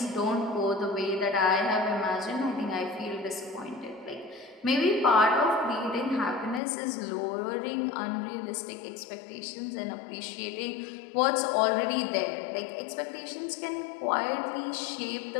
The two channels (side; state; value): right; drops out; at 6.6 s